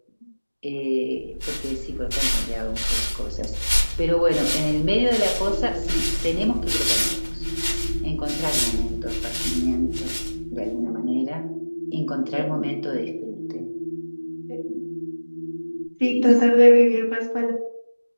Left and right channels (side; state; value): both; inverted; correlation -1.00